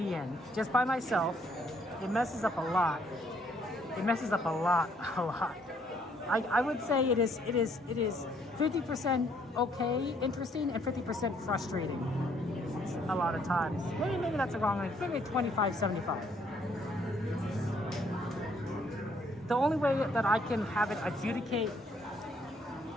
in just by myself. It messes up a lot. It messes up a lot. I would say it is 50% okay, interesting, and 50% frustrating. A lot of times. Maybe that's the wrong thing. Maybe 25-75. the only way that I can have it adjudicate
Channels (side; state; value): both; normal; correlation 0.67